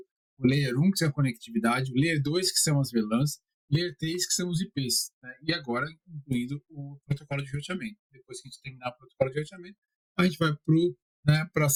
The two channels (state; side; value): identical; both; correlation 1.00